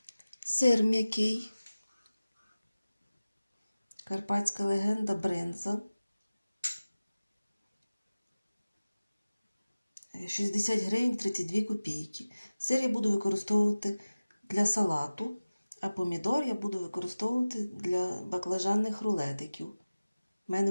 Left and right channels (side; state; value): both; inverted; correlation -0.97